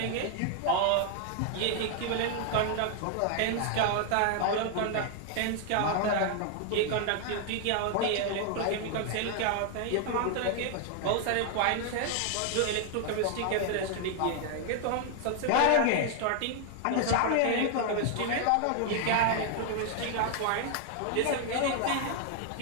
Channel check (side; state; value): both; different; correlation 0.00